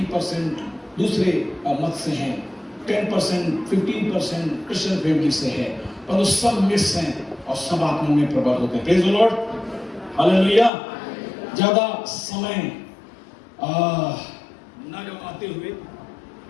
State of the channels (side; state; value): right; drops out; at 10.7 s